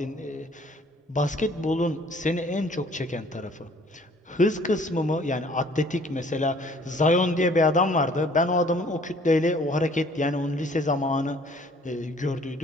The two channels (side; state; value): both; normal; correlation 0.56